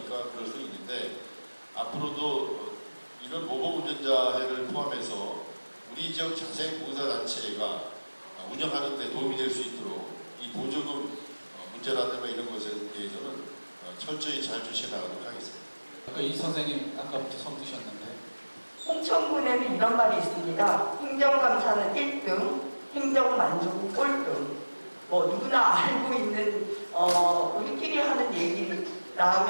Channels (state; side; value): inverted; both; correlation -1.00